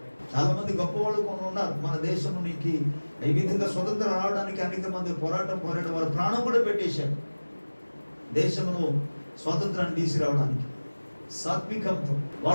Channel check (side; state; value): both; inverted; correlation -1.00